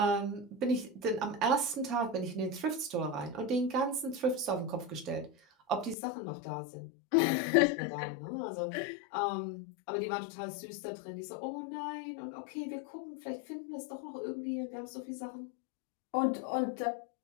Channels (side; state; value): right; drops out; at 6.0 s